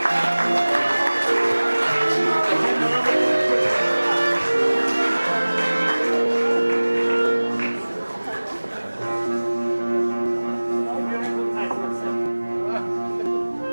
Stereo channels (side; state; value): both; inverted; correlation -1.00